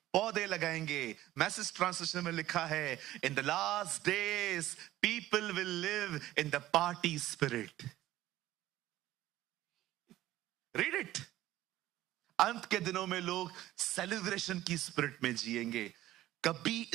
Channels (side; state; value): left; quieter; 15.0 dB